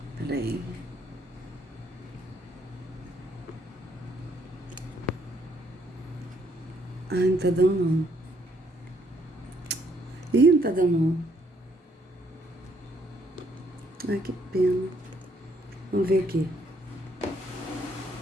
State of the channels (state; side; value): normal; both; correlation 0.69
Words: Peraí. Ai, não tá dando não. Ih, não tá dando não. Ai, que pena. Vamos ver aqui.